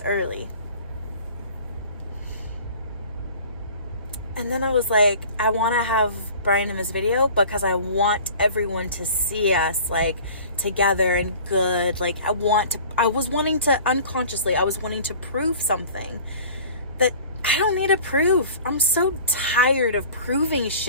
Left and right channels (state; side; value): inverted; both; correlation -0.44